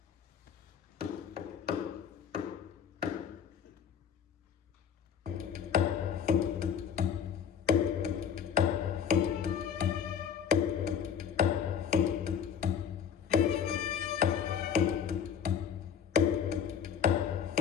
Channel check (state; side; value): quieter; right; 7.9 dB